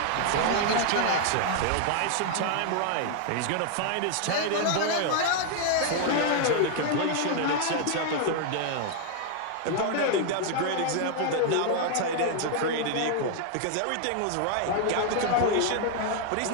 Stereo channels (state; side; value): different; both; correlation 0.00